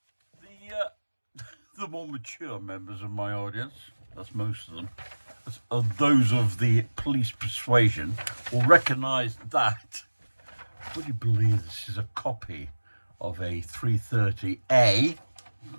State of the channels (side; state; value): both; inverted; correlation -1.00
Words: The more mature members of my audience, that's most of them, those of the police persuasion, will recognise that. Would you believe this is a copy of a 330A